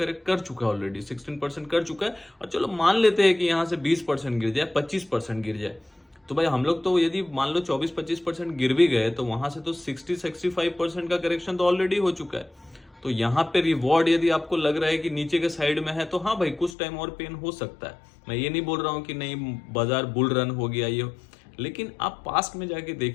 कर चुका है, ऑलरेडी 16% कर चुका है। और चलो मान लेते हैं कि यहाँ से 20% गिर जाए, 25% गिर जाए, तो भाई हम लोग तो यदि मान लो 24-25% गिर भी गए तो वहां से तो 60-65% का करेक्शन तो ऑलरेडी हो चुका है। तो यहाँ पे रिवॉर्ड यदि आपको लग रहा है कि नीचे के साइड में है, तो हाँ भाई कुछ टाइम और पेन हो सकता है। मैं ये नहीं बोल रहा हूँ कि नहीं बाजार बुल रन हो गया ये, लेकिन आप पास्ट में जाके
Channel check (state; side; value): drops out; right; at 16.8 s